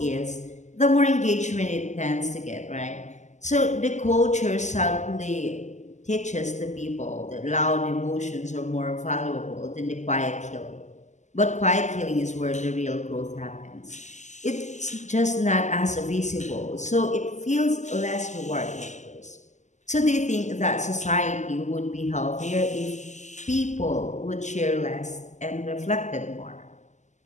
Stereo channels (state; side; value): late; right; 0.34 ms